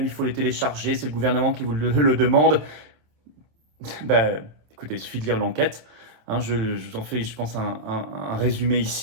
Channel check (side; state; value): left; late; 27 ms